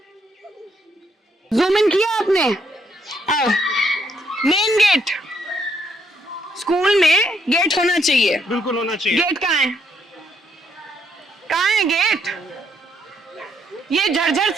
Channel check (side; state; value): both; normal; correlation 0.73